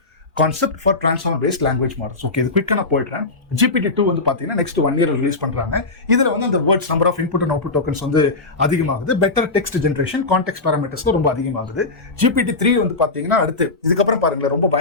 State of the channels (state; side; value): quieter; right; 3.5 dB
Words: concept for transformer based language models. Okay, இது குயிக்கா நான் போயிடுறேன். GPT 2 வந்து பாத்தீங்கன்னா நெக்ஸ்ட் 1 year ரிலீஸ் பண்றாங்க. இதுல வந்து அந்த words number of input and output tokens வந்து அதிகமாகுது. Better text generation, context parameters ரொம்ப அதிகமாகுது. GPT 3 வந்து பாத்தீங்கன்னா அடுத்து இதுக்கப்புறம் பாருங்களேன் ரொம்ப